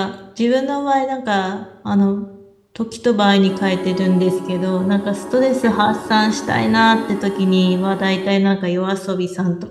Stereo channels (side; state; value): both; identical; correlation 1.00